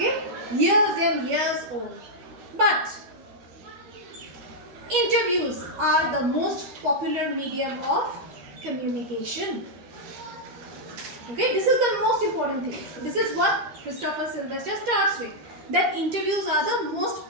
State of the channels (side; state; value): left; late; 13 ms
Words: Years and years old. But interviews are the most popular medium of communication. Okay, this is the most important thing. This is what Christopher Sylvester starts with. That interviews are the most